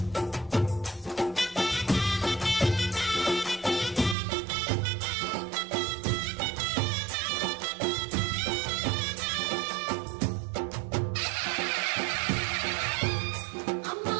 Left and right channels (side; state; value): left; drops out; at 4.2 s